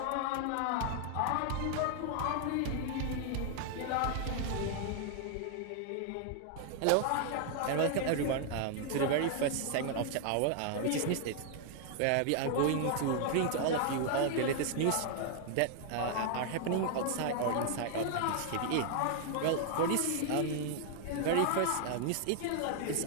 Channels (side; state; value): both; different; correlation 0.00